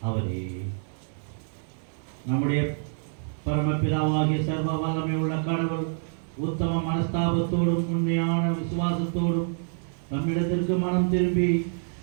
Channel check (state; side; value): silent; left; 59 dB below the other